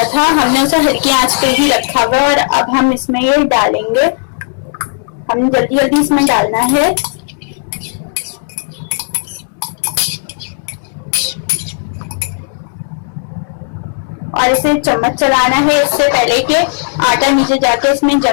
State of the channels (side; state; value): right; silent; digital silence